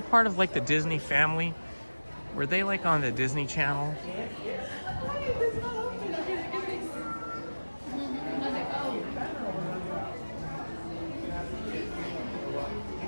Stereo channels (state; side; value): inverted; both; correlation -1.00